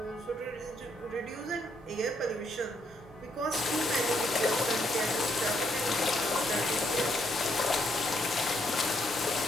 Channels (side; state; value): both; normal; correlation 0.74